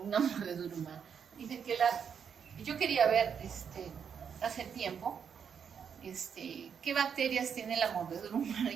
una mordedura humana. Dicen que yo quería ver hace tiempo qué bacterias tiene la mordedura humana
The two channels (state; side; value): quieter; left; 7.3 dB